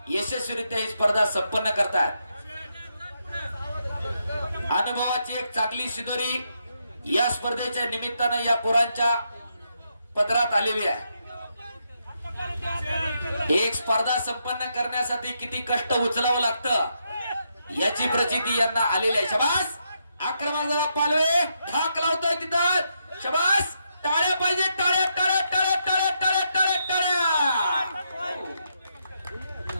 यशस्वीरित्या ही स्पर्धा संपन्न करतात। अनुभवाची एक चांगली शिदोरी या स्पर्धेच्या निमित्तानं या पोरांच्या पदरात आलेली आहे। एक स्पर्धा संपन्न करण्यासाठी किती कष्ट उचलावं लागतं याची प्रचिती यांना आलेली आहे। शाबास, आक्रमक जरा पालवे ढाक लावतोय तिथं। शाबास, टाळ्या पाहिजे, टाळ्या टाळ्या टाळ्या टाळ्या टाळ्या टाळ्या टाळ्या।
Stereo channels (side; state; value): both; inverted; correlation -0.80